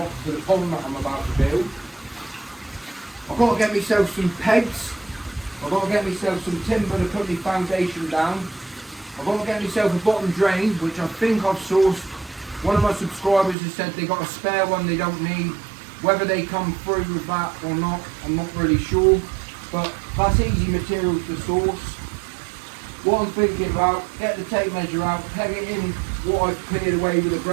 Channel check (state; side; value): drops out; left; at 13.6 s